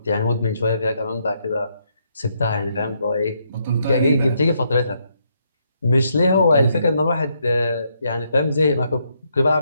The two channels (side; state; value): both; inverted; correlation -0.76